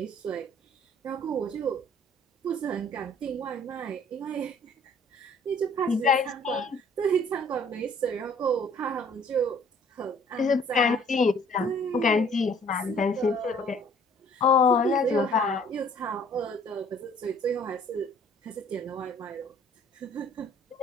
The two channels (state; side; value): normal; both; correlation 0.57